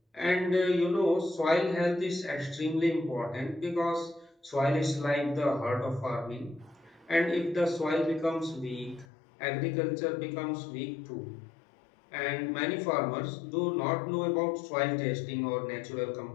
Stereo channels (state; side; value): drops out; right; at 9.1 s